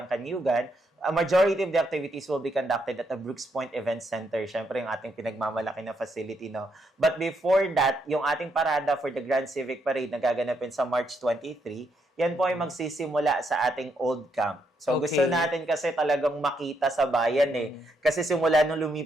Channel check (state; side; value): normal; both; correlation 0.77